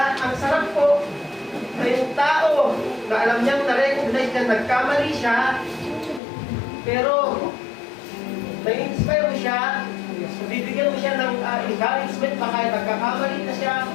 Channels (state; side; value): drops out; right; at 6.2 s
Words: Ang sarap po na yung tao na alam niyang na-recognize niya, nagkamali siya, pero na-inspire mo siya, bibigyan mo siya ng encouragement pa kahit nagkakamali na siya,